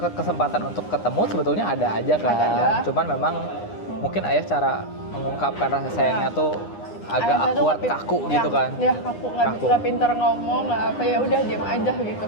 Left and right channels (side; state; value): right; late; 9.8 ms